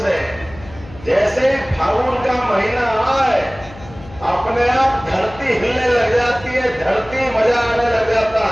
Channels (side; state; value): left; noise; hum, 18 dB below the sound